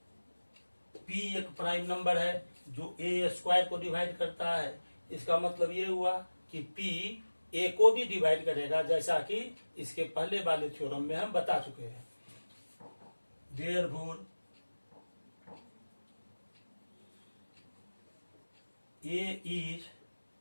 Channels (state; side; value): inverted; both; correlation -1.00